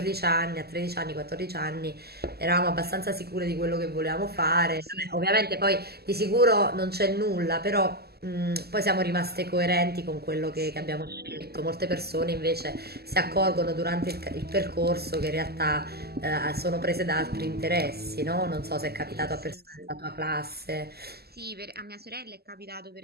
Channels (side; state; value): left; late; 0.46 ms